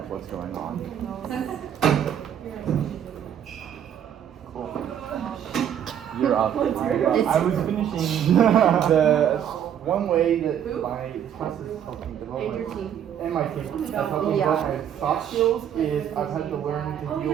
what's going on. Cool. You're up. I was finishing the one way that my class is helping develop And your team. and my team has helped me develop my soft skills is I've had to learn to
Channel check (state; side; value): quieter; left; 9.4 dB